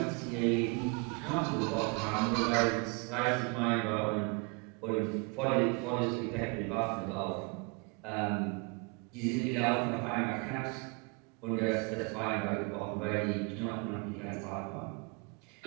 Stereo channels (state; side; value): quieter; left; 33.1 dB